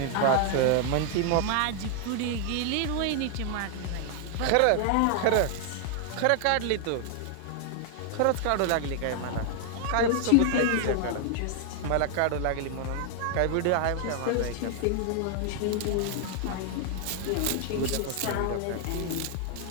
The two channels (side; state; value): both; different; correlation 0.00